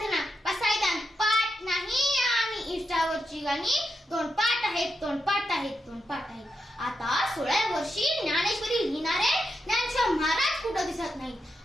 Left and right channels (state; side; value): normal; both; correlation 0.86